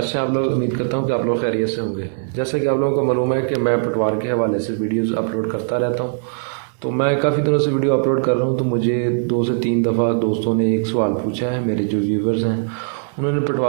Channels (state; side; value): silent; left; digital silence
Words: हैं आप लोग। उम्मीद करता हूं कि आप लोग खैरियत से होंगे। जैसा कि आप लोगों को मालूम है कि मैं पटवार के हवाले से वीडियोस अपलोड करता रहता हूं, तो मैं काफ़ी दिनों से वीडियो अपलोड कर रहा हूं। तो मुझे 2 से 3 दफ़ा दोस्तों ने एक सवाल पूछा है, मेरे जो व्यूवर्स हैं उन्होंने